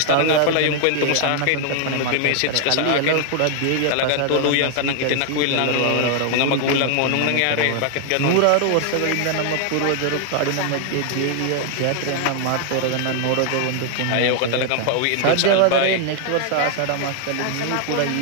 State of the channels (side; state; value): both; different; correlation 0.00